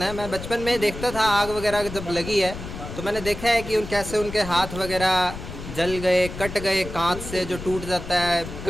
हैं। मैं बचपन में देखता था आग वगैरह जब लगी है तो मैंने देखा है कि कैसे उनके हाथ वगैरह जल गए, कट गए, कांच से जो टूट जाता है,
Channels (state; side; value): noise; left; rumble, 10 dB below the sound